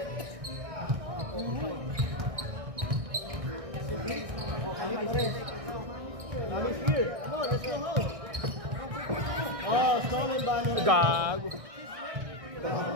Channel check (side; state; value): left; late; 1.6 ms